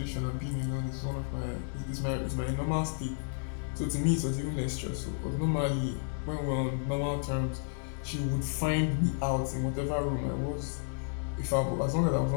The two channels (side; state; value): right; silent; digital silence